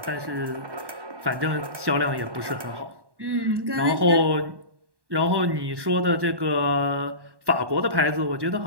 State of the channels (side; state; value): left; late; 1.1 ms